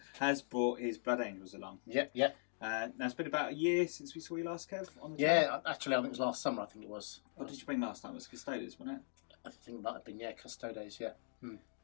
has brought his Blood Angels along. Yep. Now it's been about a year since we saw you last, Kev, on the channel. Actually, I think it was last summer. I think it was. What did you bring last time? It was Custodes, wasn't it? I think it might have been, Custodes, yeah.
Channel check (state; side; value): silent; right; digital silence